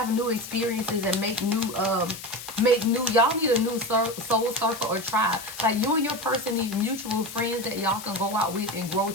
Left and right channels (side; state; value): left; noise; hiss, 12 dB below the sound